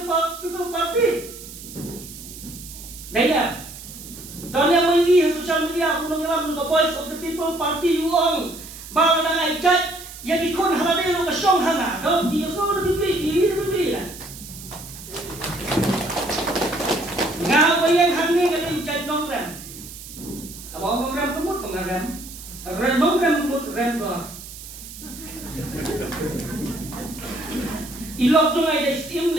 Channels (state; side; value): noise; right; hiss, 14 dB below the sound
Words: party. Daya. Donya mai social media punong yalam ka boys of the people party uong bala na ay kat ya dikon halade no ka song hanga do di so no di na. Nga bayang hangni ka din chat nong ram. Abo ram kumut pangaram. Ram ram kumut ram do. Ilok tu ngai dah steam